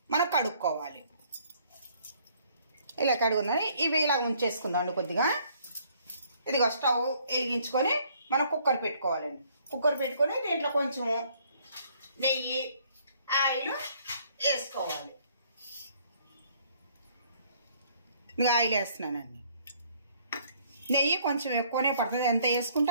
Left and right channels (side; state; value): both; inverted; correlation -0.62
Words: మనం కడుక్కోవాలి. ఇలా కడుగుందని ఇవి ఇలా ఉంచేసుకుందామండి కొద్దిగా. ఇదిగో స్టవ్ వెలిగించుకొని మనం కుక్కర్ పెట్టుకోవాలండి. కుక్కర్ పెట్టుకొని దీంట్లో కొంచెం నెయ్యి, ఆయిల్ వేసుకోవాలి. ఇంకా ఆయిల్ వేస్తున్నానండి. నెయ్యి కొంచెం ఎక్కువనే పడుతుంది, ఎంత వేసుకుంటే